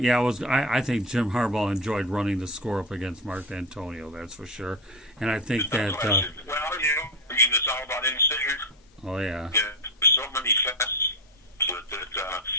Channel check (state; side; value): normal; both; correlation 0.16